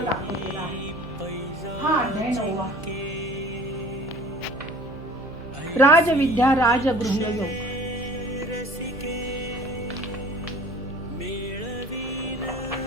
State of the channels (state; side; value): noise; left; hum, 19 dB below the sound